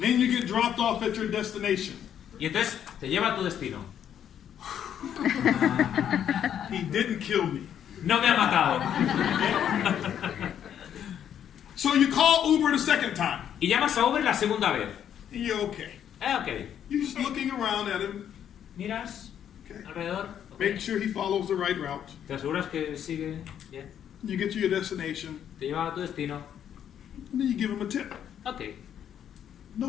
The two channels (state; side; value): quieter; right; 9.5 dB